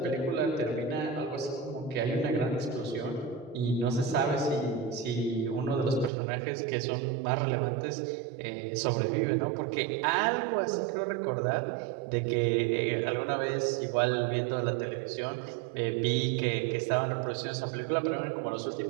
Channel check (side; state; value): left; drops out; at 6.1 s